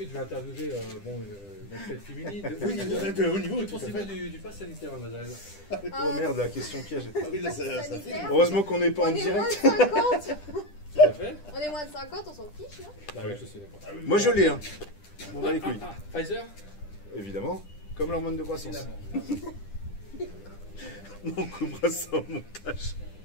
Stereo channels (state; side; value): late; right; 10 ms